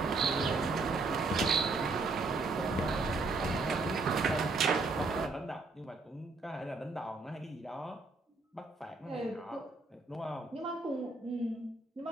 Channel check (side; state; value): left; quieter; 3.7 dB